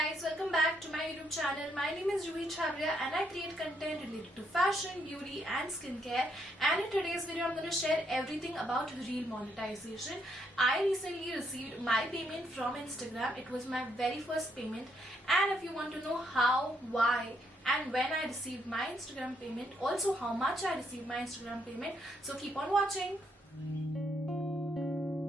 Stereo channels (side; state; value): both; normal; correlation 0.75